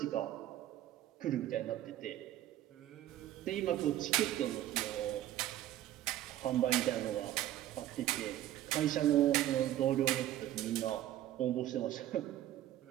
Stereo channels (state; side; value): quieter; left; 13.2 dB